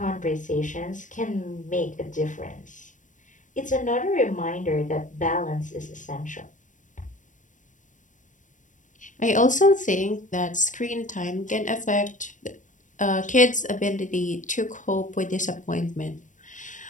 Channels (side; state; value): right; late; 0.37 ms